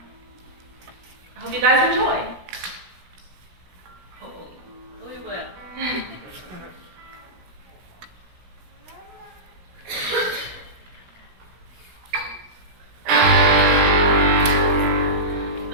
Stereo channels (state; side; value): late; left; 17 ms